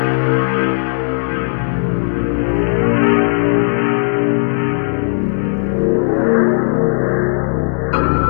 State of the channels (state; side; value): silent; right; 69 dB below the other